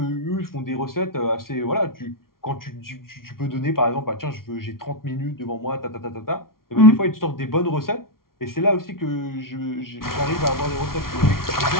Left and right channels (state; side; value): late; right; 0.93 ms